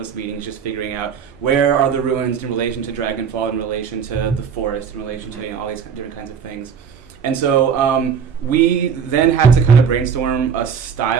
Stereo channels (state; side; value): quieter; left; 7.0 dB